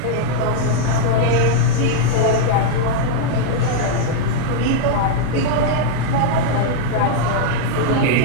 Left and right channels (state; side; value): different; both; correlation -0.01